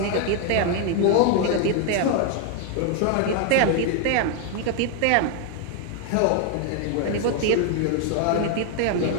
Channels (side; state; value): both; different; correlation 0.01